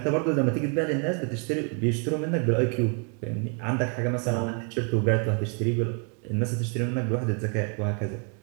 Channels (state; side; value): quieter; left; 37.4 dB